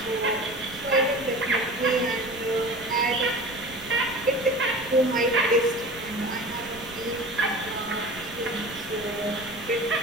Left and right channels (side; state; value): right; noise; rumble, 20 dB below the sound